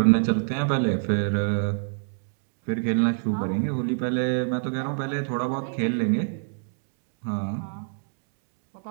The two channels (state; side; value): silent; left; digital silence